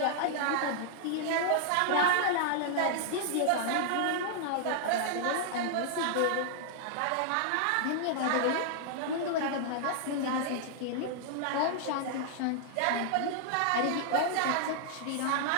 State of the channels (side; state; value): both; different; correlation -0.01